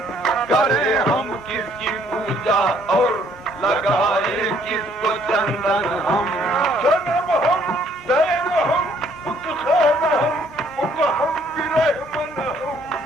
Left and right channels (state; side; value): normal; both; correlation 0.64